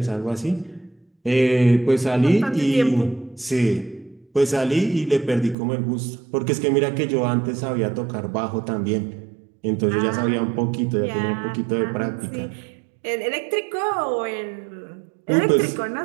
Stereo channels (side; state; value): left; drops out; at 5.6 s